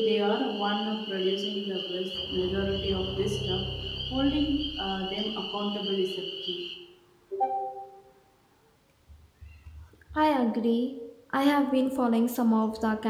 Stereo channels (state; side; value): identical; both; correlation 1.00